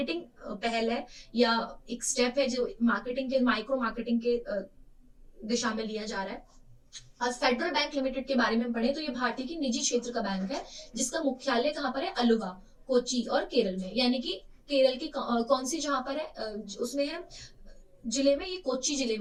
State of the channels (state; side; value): identical; both; correlation 1.00